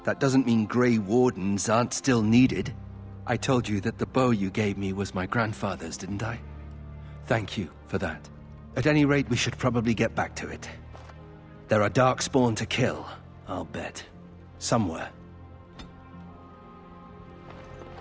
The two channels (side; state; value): both; identical; correlation 1.00